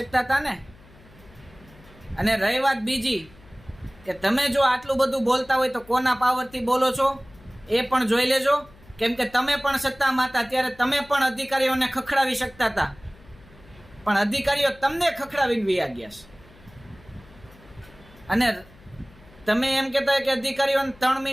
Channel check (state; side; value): noise; left; hum, 24 dB below the sound